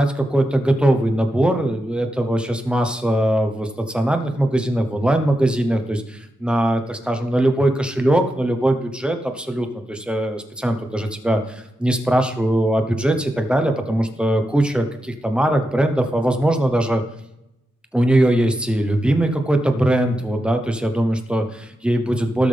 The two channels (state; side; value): normal; both; correlation 0.88